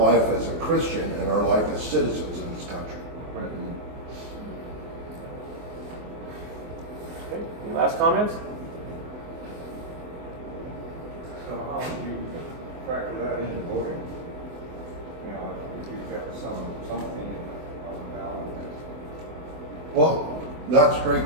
as a Christian and our life as citizens in this country. Okay. Any last comments? So how would you factor that into voting? If you've got something on the ballot. Well, that's a great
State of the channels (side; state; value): left; late; 24 ms